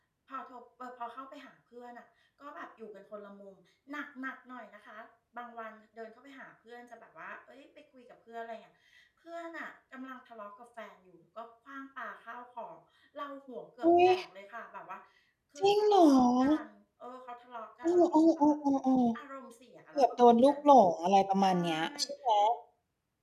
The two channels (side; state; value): both; identical; correlation 1.00